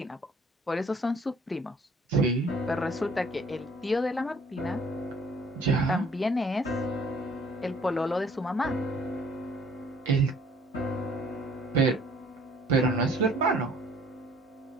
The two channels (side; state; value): both; normal; correlation 0.57